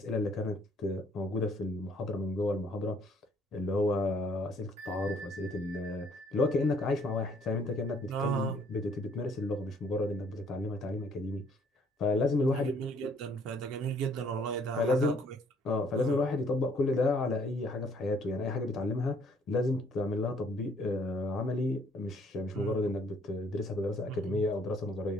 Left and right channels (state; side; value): normal; both; correlation 0.63